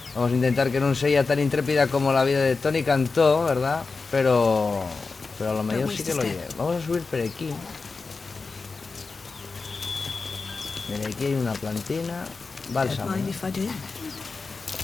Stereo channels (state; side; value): quieter; right; 4.3 dB